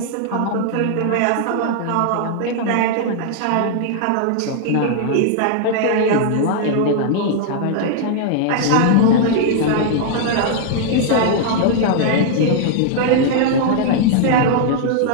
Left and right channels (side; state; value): both; different; correlation -0.01